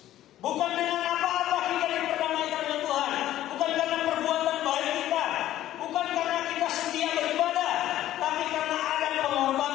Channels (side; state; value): right; quieter; 13.3 dB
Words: Bukan dengan apa-apa kita diperdamaikan dengan Tuhan, bukan karena perbuatan baik kita, bukan karena kita setia beribadah, tapi karena ada